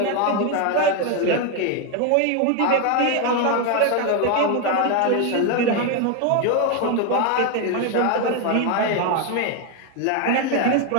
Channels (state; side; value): different; both; correlation 0.01